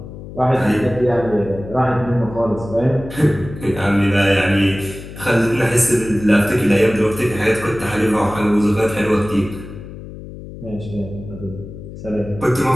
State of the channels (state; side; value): noise; left; hum, 13 dB below the sound